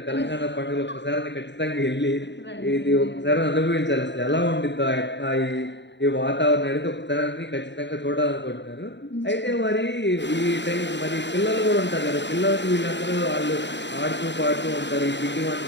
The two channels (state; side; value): late; right; 0.52 ms